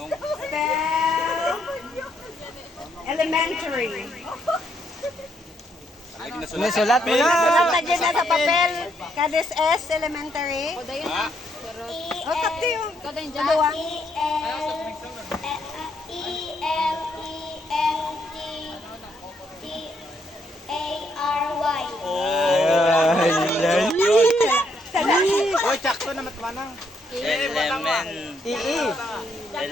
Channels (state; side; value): normal; both; correlation 0.74